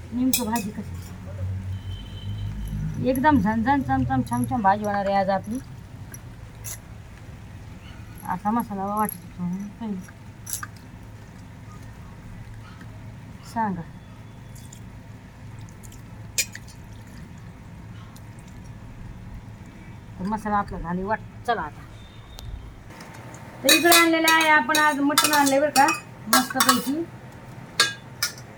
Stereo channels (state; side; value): identical; both; correlation 1.00